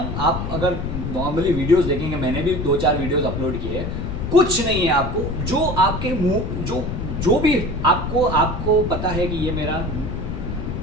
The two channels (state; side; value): noise; left; rumble, 4 dB below the sound